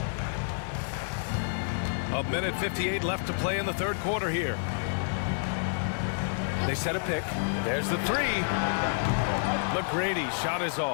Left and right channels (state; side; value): silent; right; digital silence